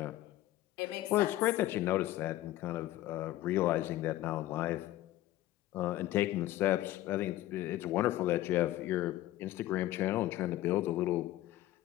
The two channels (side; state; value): right; quieter; 15.3 dB